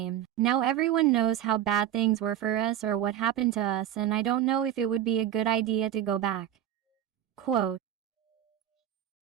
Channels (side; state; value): left; quieter; 11.4 dB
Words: Now everyone knows how bad things were for us or what happened to us, and I don't know if it would be a good idea to go back. Quote.